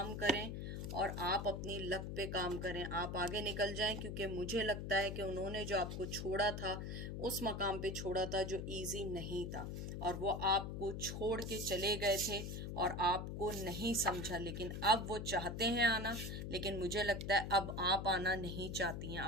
करें और आप अपनी लक पे काम करें, आप आगे निकल जाएं। क्योंकि मुझे लगता है कि उन्होंने जो आपको छोड़ा था उस मकाम पे छोड़ा था जो इजी नहीं था, और वो आपको छोड़ के चले गए थे और आपको नहीं समझा। लेकिन अब वो चाहते हैं आना, लेकिन मुझे लगता है अब आप आना नहीं चाहती हैं।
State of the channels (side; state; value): left; noise; hum, 5 dB below the sound